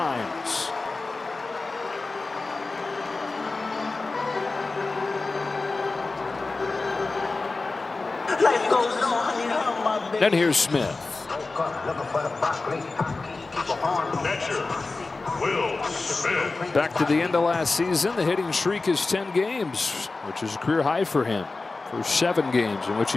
Then here's Smith. Will Smith. Back to the end of last season, the hitting streak is 10 games, which is a career high for him. For 7 games in which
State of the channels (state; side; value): quieter; right; 3.6 dB